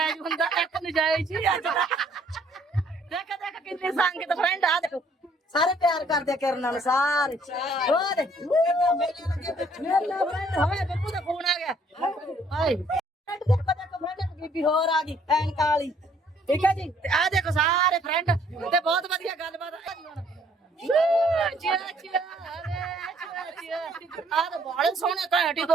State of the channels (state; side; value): normal; both; correlation 0.62